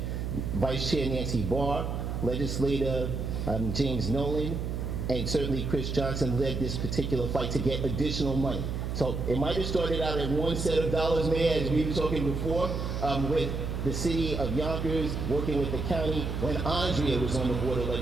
Vice Chair Nancy Barr, legislator James Nolan, and certainly Chris Johnson led this particular fight to get additional money. So it might have started out at one set of dollars, Mayor, as we were talking before, with the city of Yonkers working with the county when Andrea was on the board of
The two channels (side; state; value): right; noise; hum, 3 dB below the sound